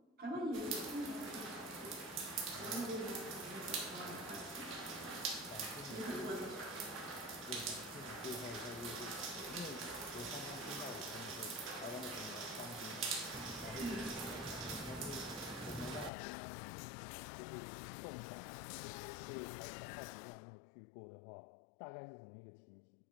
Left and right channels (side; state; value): right; drops out; at 16.1 s